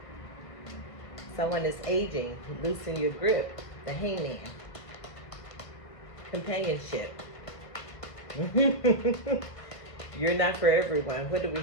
Someone is aging. Loosen your grip. The Hangman. Companionship. You're not for everyone. What do we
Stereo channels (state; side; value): late; right; 1.5 ms